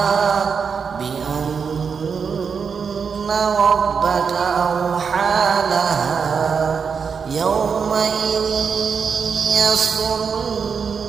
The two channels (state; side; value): quieter; left; 6.1 dB